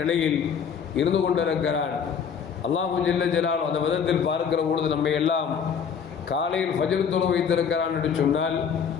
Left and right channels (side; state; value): right; quieter; 7.0 dB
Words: நிலையில் இருந்து கொண்டிருக்கிறான். அல்லாஹு ஜல்ல ஜலால் அந்த விதத்தில் பார்க்கிற பொழுது நம்மை எல்லாம் காலையில் ஃபஜ்ர் தொழ வைத்திருக்கிறான் என்று சொன்னால்